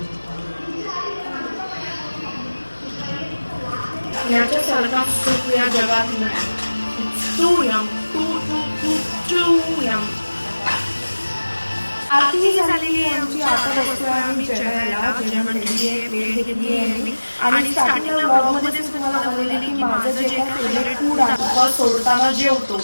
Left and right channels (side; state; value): both; inverted; correlation -1.00